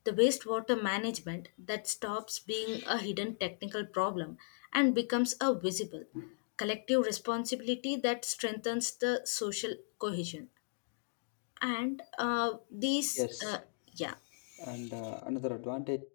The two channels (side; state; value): right; silent; digital silence